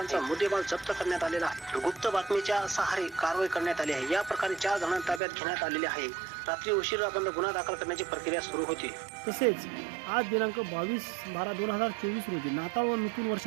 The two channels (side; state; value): left; drops out; at 5.2 s